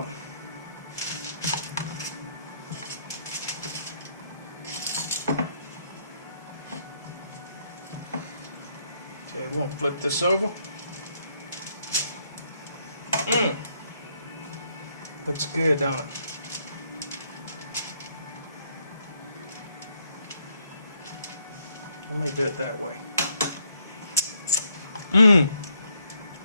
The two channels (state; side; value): inverted; both; correlation -0.72